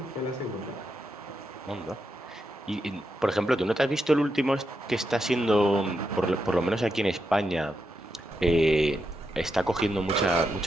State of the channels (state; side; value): normal; both; correlation 0.84